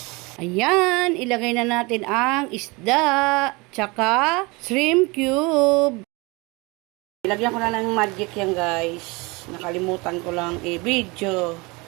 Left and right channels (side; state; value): left; quieter; 25.7 dB